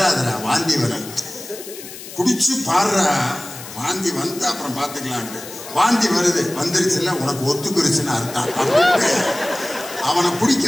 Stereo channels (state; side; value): noise; left; hiss, 13 dB below the sound